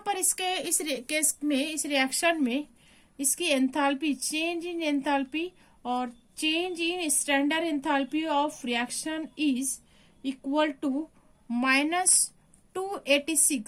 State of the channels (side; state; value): both; identical; correlation 1.00